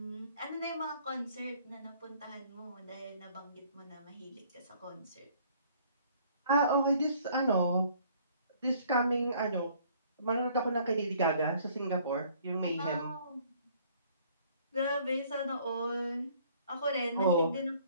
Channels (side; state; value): both; inverted; correlation -0.59